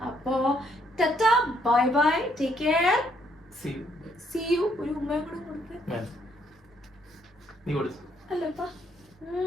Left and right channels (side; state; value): both; normal; correlation 0.70